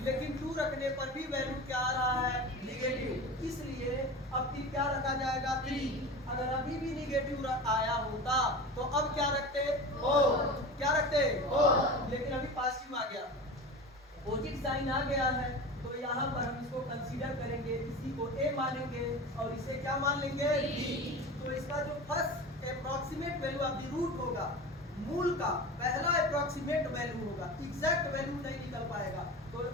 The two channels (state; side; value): normal; both; correlation 0.31